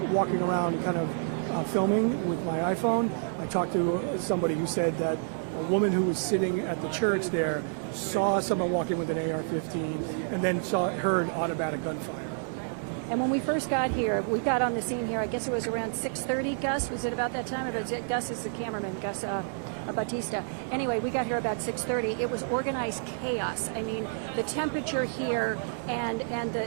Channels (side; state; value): left; silent; digital silence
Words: walking around kind of filming with my iPhone, I talked to somebody who said that a woman who was sitting at the church there saw someone walking with an AR-15 and then heard automatic gunfire. And when we first got here, we got on the scene here, I guess it was around 6:30, Gus. Was it about that time? Gus is the cameraman, Gus Batista. Anyway, we got here about 6:30. It was organized chaos. I mean, the temperature here and